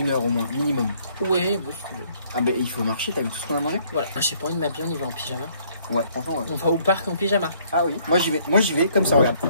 heure au moins, minimum. Oui, bon, si tu veux. Ah bah il faut marcher, t'as vu tout ce qu'on a mangé? Voilà. Ah, j'ai pas envie de m'habiller, on y va en pyjama. Ouais, franchement ouais. On va au parc en pyjama. Ah oui. Moi j'y vais comme ça, regarde.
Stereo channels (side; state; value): both; inverted; correlation -0.64